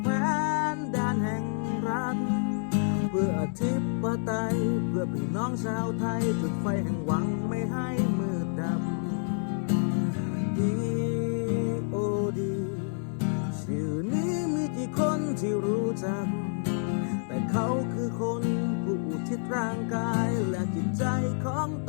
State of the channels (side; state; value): right; silent; digital silence